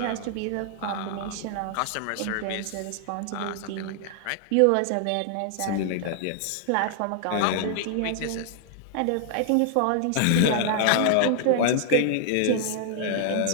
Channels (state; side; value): different; both; correlation 0.00